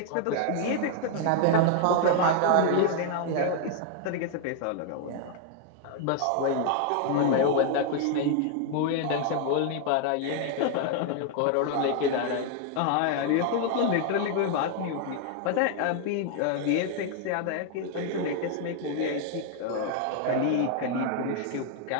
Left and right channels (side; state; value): both; different; correlation 0.00